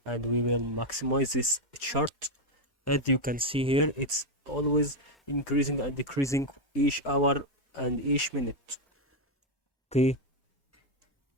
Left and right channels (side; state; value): both; normal; correlation 0.04